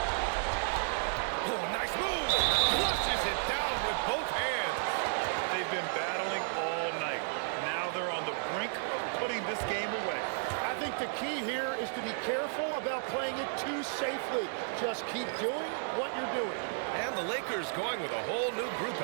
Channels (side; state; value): left; silent; digital silence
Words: Oh, nice move. Flushes it down with both hands. They've been battling all night. Now they're on the brink of putting this game away. I think the key here is to be careful about playing it too safely. Just keep doing what you're doing. And the Lakers going with a whole new group